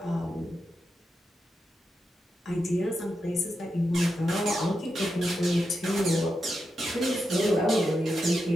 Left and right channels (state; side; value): normal; both; correlation 0.87